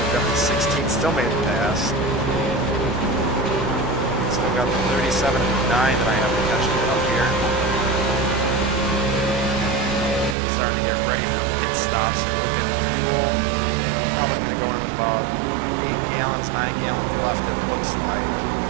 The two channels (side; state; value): left; drops out; at 10.4 s